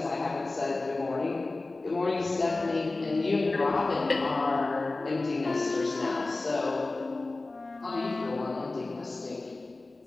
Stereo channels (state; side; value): quieter; right; 3.2 dB